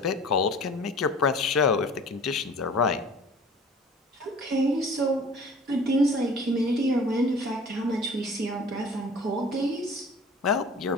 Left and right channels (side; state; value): both; normal; correlation 0.45